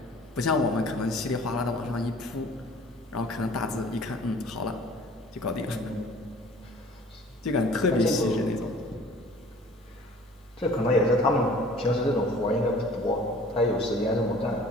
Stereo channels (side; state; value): both; normal; correlation 0.49